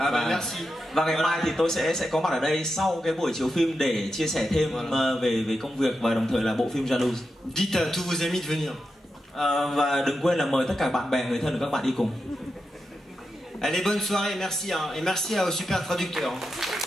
Và ngày mai thì tôi sẽ có mặt ở đây sau cái buổi chiếu phim để chia sẻ thêm về công việc và đồng thời là bộ phim Jalouse. Dites à tous vos amis de venir. Và đừng quên là mời tất cả bạn bè, người thân của các bạn đi cùng. Allez, bonne soirée, merci, hein, et merci au super traducteur.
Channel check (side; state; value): both; normal; correlation 0.88